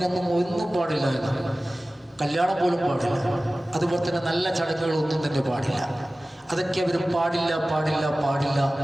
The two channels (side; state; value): both; normal; correlation 0.97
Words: ഒന്നും പാടില്ല എന്ന്, കല്യാണം പോലും പാടില്ല. അതുപോലെ തന്നെ നല്ല ചടങ്ങുകളൊന്നും തന്നെ പാടില്ല. അതൊക്കെ അവർ പാടില്ല പാടില്ല പാടില്ല